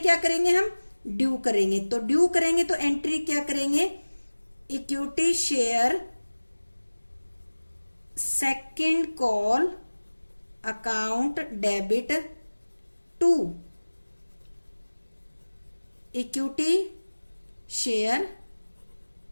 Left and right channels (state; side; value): inverted; both; correlation -1.00